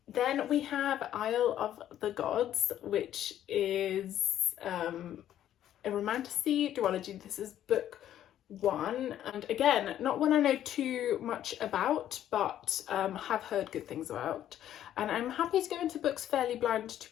Then we have Isle of the Gods, which is a romantasy duology. This is book 1, and again, not one I know too much about, but have heard good things about, and I'm happy to go into books fairly blind,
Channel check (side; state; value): right; quieter; 11.4 dB